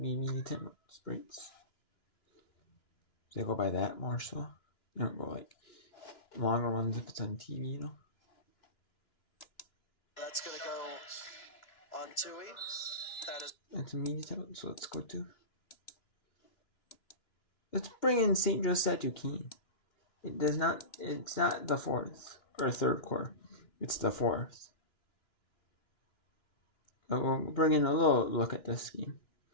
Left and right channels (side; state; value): right; late; 2.9 ms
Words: 10 minutes breaks. They go by that more so. They don't go like longer ones if it's on TV, That's going to go on Tui. That's a media title, so let's go to. Let's bring in St. Joseph Duquesne. It's not the fourth or third quarter. It's the fourth. But we'll bring in a little look at this game.